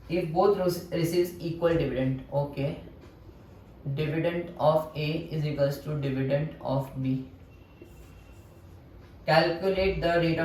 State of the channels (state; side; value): identical; both; correlation 1.00